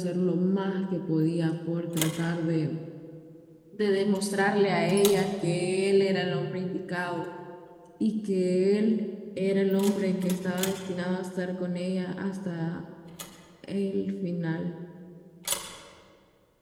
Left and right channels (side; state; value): both; identical; correlation 1.00